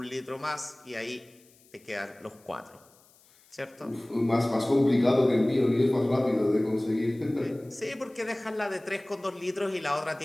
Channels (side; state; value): left; noise; hiss, 29 dB below the sound